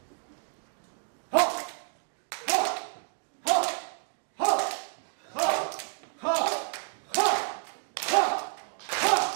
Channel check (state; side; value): silent; left; 58 dB below the other